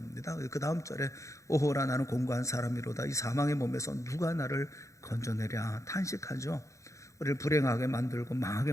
그 다음 절에 오호라 나는 공고한 사람이로다 이 사망의 몸에서 누가 나를 건져내랴 탄식하죠. 우리를 불행하게 만들고 망하게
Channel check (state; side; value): late; right; 0.15 ms